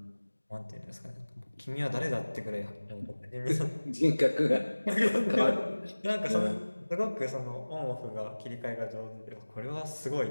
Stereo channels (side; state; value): both; inverted; correlation -1.00